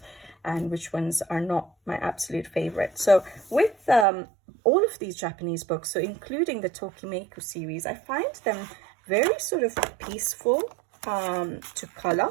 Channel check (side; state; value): left; drops out; at 4.0 s